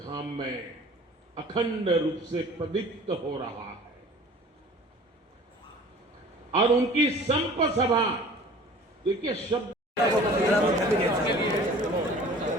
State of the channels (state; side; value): normal; both; correlation 0.46